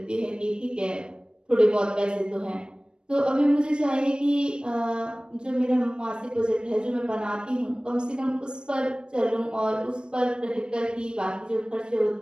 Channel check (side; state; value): left; late; 0.053 ms